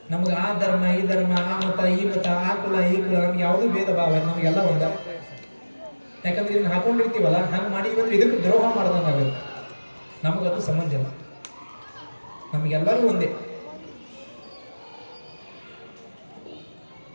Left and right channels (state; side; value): inverted; both; correlation -1.00